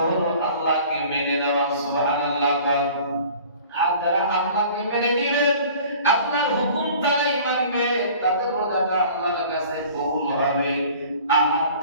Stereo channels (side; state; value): both; inverted; correlation -0.47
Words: হলো আল্লাহকে মেনে নেওয়া। সুবহানাল্লাহ। আর যারা আল্লাহকে মেনে নিবে, আল্লাহর হুকুম তারাই মানবে, তাদের রোজাটা আল্লাহর কাছে কবুল হবে। আর